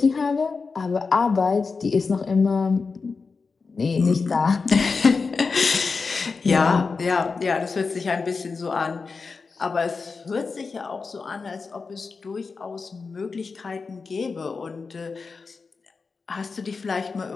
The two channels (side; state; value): right; quieter; 4.6 dB